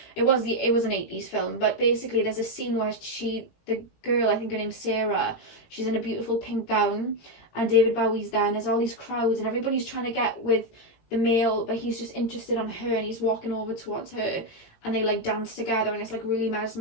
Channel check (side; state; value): right; late; 17 ms